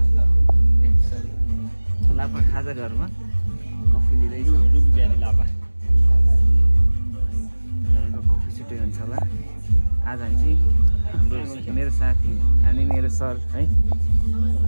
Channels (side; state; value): both; inverted; correlation -1.00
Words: लापा खाजा घरमा कफी लिँदैछ कफी छुट्टै हुन्छ होला आज हामी चाहिँ हाम्रो मेरो साथी अनि मेरो सर है